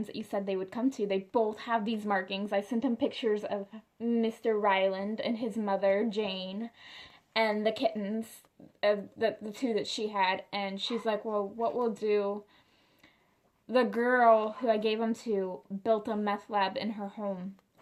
that you said they would come to. They both have these markings. I sent them pictures of Mr. Ryland and his mother, Jane, and the kittens, the 2 that she had, and she's like, well, what we'll do... The girl who I gave them to built a meth lab in her home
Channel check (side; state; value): both; identical; correlation 1.00